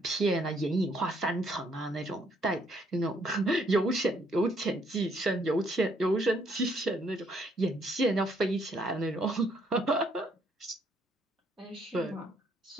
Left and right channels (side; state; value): both; normal; correlation 0.68